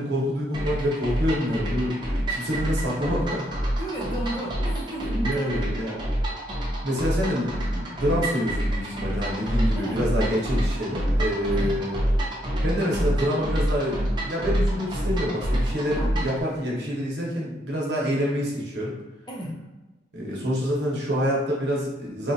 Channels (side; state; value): both; normal; correlation 0.75